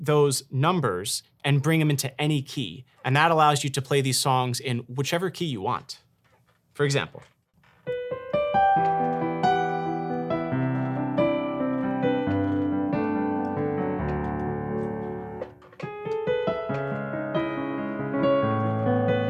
those numbers and bring them into any key. And that allows you to play these songs in whichever key you want. For example.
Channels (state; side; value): identical; both; correlation 1.00